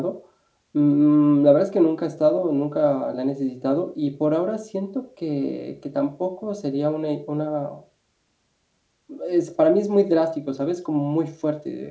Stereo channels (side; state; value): both; identical; correlation 1.00